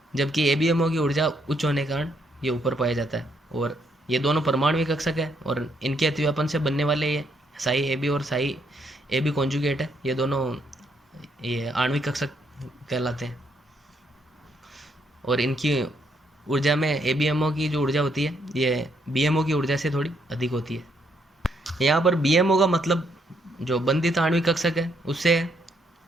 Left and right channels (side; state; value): both; normal; correlation 0.73